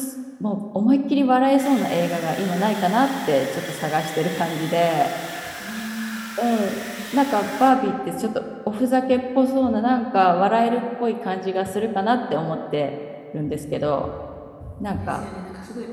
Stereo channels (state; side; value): identical; both; correlation 1.00